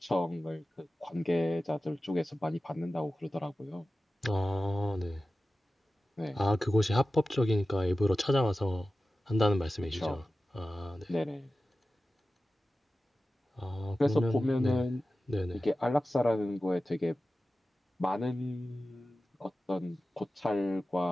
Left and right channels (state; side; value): normal; both; correlation 0.94